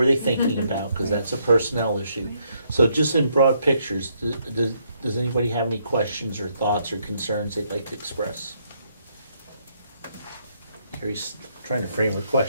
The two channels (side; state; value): both; inverted; correlation -0.73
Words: they thinking about, because that's a personnel issue. So just in broad pictures, does anybody have any questions or thoughts or concerns they'd like to express? Carrie's trying to frame her